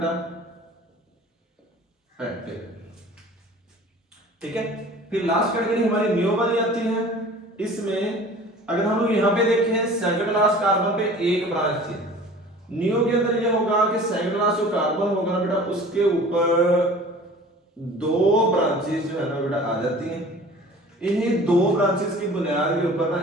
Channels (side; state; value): both; normal; correlation 0.44